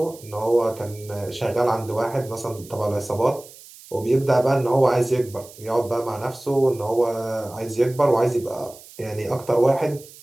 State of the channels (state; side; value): noise; right; hiss, 20 dB below the sound